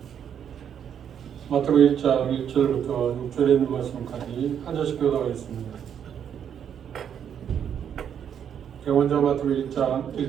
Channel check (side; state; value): left; quieter; 8.6 dB